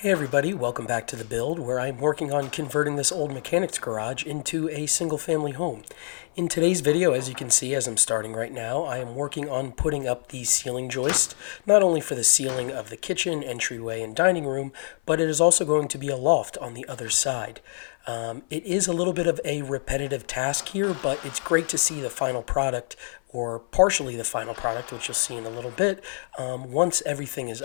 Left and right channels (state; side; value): silent; right; 55 dB below the other